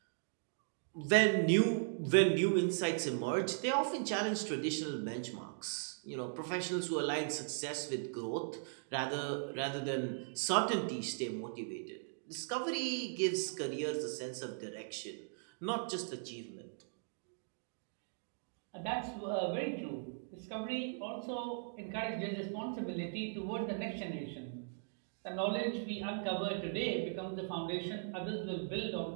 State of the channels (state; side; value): silent; left; digital silence